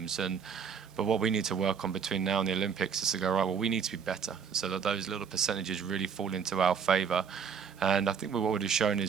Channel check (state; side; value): quieter; left; 6.7 dB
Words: But what we need to work on between now and the Olympics is to go, right, well, we need to be better, so that those little percentages really fall into our favour. And I think what we've shown